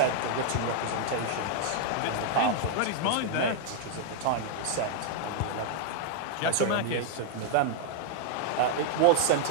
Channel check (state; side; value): different; both; correlation -0.01